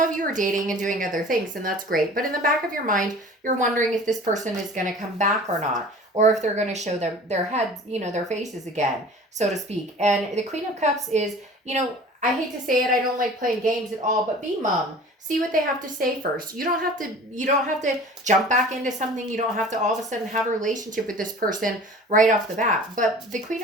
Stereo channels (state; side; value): normal; both; correlation 0.43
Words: you are dating and doing other things, and that's great. But in the back of your mind, you're wondering if this person is going to come back or not, or if they're going to show their heads, their faces again, so to speak. And the Queen of Cups is, I hate to say it, I don't like playing games at all, but be mum. See what they have to say first. You don't have to jump back into something. You don't have to all of a sudden have a relationship with this person right off the bat. But the Queen